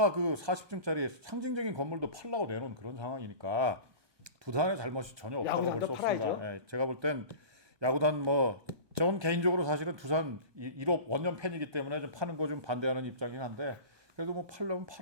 그 40층짜리 상징적인 건물도 팔라고 내놓은 그런 상황이니까 두산의 잘못이 전혀 없다고 볼 야구단도 수 없습니다. 팔아야죠. 예, 제가 볼 땐 야구단 전 개인적으로 사실은 두산 1호 원년 팬이기 때문에 좀 파는 거 좀 반대하는 입장이긴 한데 그래도 뭐 팔려면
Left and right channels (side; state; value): left; late; 1.2 ms